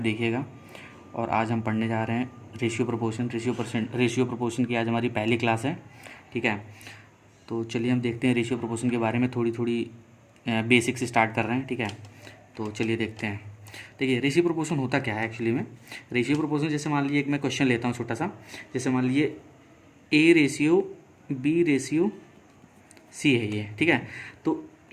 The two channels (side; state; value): both; identical; correlation 1.00